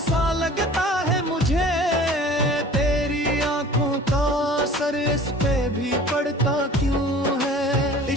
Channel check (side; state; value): both; normal; correlation 0.45